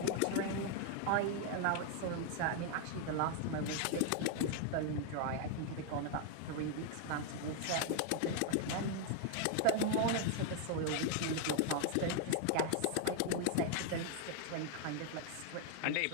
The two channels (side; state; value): both; different; correlation 0.00